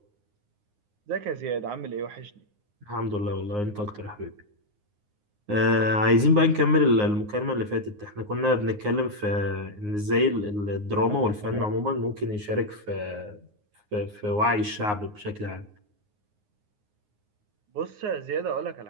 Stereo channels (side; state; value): left; late; 9.6 ms